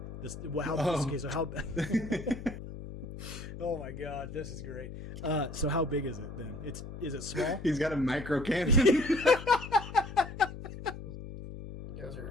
Okay, so how Oh my god, this is great. So how big is it then? Is it small? He's got a micro cannon. You guys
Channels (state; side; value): noise; left; hum, 11 dB below the sound